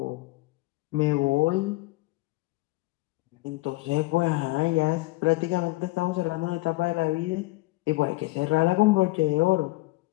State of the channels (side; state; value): right; quieter; 20.9 dB